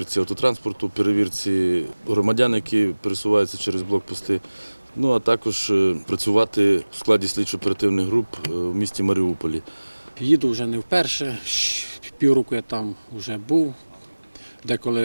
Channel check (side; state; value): both; inverted; correlation -1.00